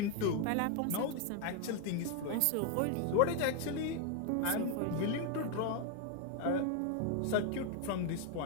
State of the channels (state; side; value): different; both; correlation 0.01